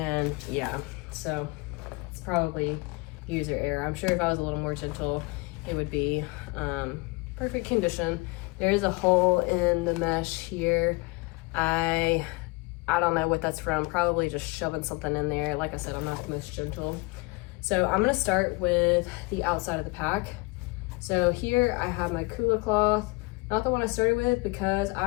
yeah, so it's probably user error. I'm sure if I was a little more gentle, it would be perfect condition. There is a hole in the mesh here. I don't know what that's from. Probably just shoving something in there. Like I said, I'm not the most gentle. So I'm gonna start with the outside of the pack. So here I have my Kula cloth, not the one I started with because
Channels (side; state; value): right; quieter; 26.2 dB